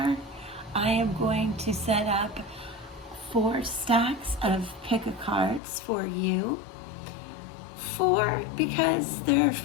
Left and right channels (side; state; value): right; drops out; at 5.6 s